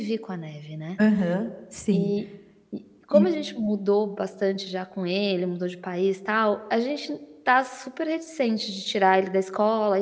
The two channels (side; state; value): both; identical; correlation 1.00